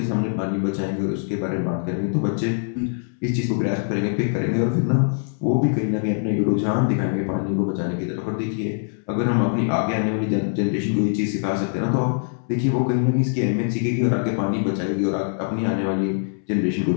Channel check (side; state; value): right; silent; 63 dB below the other